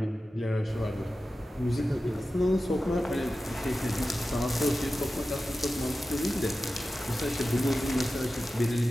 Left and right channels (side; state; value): both; normal; correlation 0.94